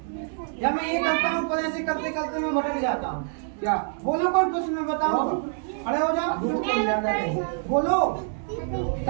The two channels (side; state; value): left; silent; 59 dB below the other